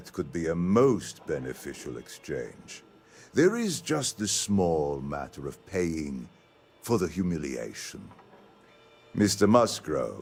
could be a most beneficial exchange. There is just the small matter of paying for the humiliation. Mr.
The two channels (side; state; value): both; identical; correlation 1.00